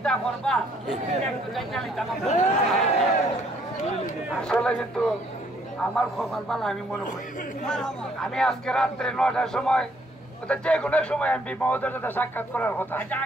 করবা একটু জানা লিতাম আসলে কিন্তু আমার খবর ভালো আমি মনে করি আমি আজকে রাত্রে 9টার সময় যে কোনো সময় এমপি মহোদয়ের সাথে সাক্ষাৎ করার কথা। আচ্ছা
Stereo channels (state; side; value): normal; both; correlation 0.66